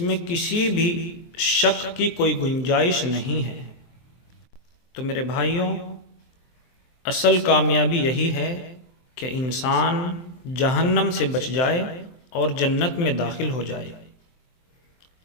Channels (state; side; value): late; right; 23 ms